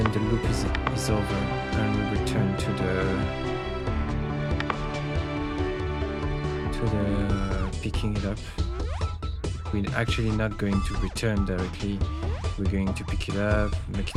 the loop is over and we return to the picking it up. We're actually not going to return directly. We're going to pick it up, make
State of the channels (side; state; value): both; identical; correlation 1.00